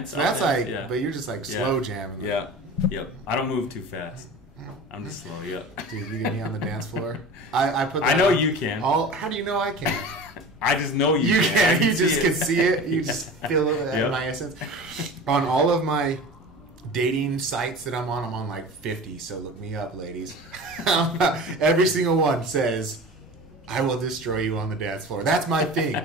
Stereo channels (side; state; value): both; normal; correlation 0.36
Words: So that's but you're just like slow jamming. Yeah. Yep. I don't move too fast. I'm just slow. Yep. Dude, you get me on the dance floor. I know you can. How do you know I can? I just know you can. You just can see it. You just feel it in my essence. On all of my dating sites that I'm on like 50. So look me up, ladies. Every single one says, "I will destroy you on the dance floor." That's my thing.